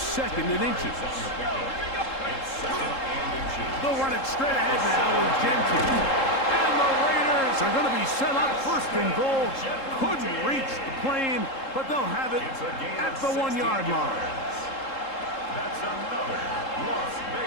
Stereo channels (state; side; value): late; right; 3.7 ms